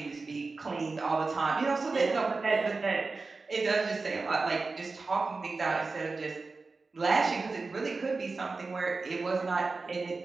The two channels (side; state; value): left; quieter; 3.9 dB